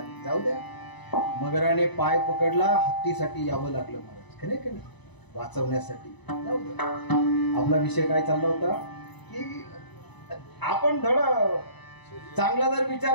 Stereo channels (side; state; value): right; late; 1.0 ms